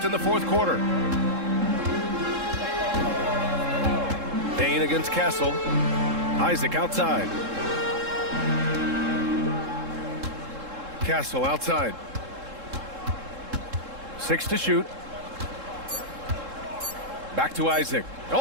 in the fourth quarter. Bain against Castle. Isaac outside. Castle outside. 6 to shoot. Back to Isaac.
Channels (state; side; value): late; left; 3.7 ms